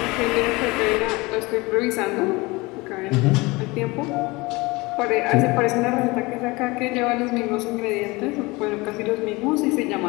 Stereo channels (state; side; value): quieter; right; 23.4 dB